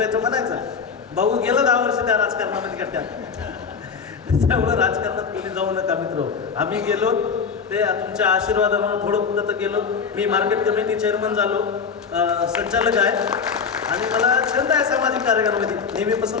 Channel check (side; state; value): right; quieter; 5.9 dB